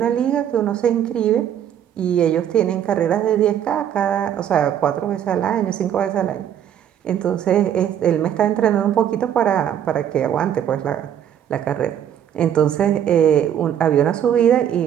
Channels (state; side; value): quieter; left; 9.7 dB